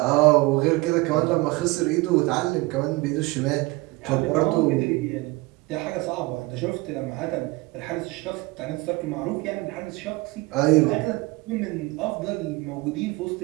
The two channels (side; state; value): left; quieter; 22.9 dB